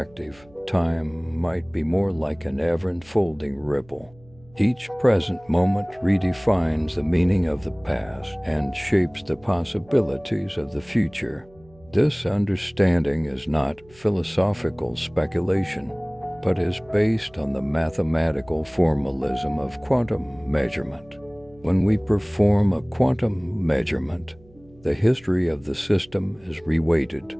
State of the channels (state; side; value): noise; right; hum, 27 dB below the sound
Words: time might be more like an ever-unfolding ripple. Each present moment redefines the meaning of the past and shapes the possibilities of the future. This understanding is not philosophical speculation, but is based on the mathematical formalism of quantum measurement. When we perform a quantum measurement, the history of the system is